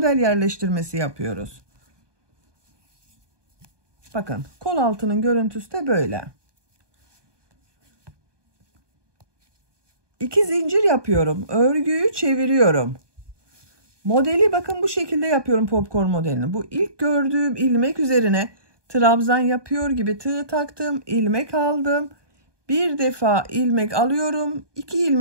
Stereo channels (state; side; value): late; left; 1.2 ms